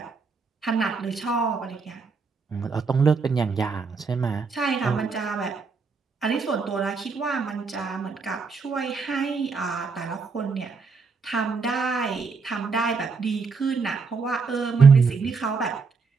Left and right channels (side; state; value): left; quieter; 4.8 dB